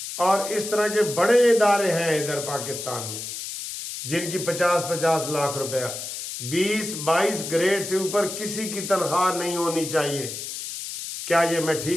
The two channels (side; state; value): left; noise; hiss, 7 dB below the sound